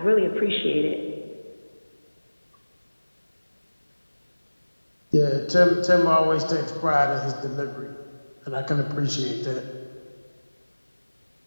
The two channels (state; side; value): inverted; both; correlation -1.00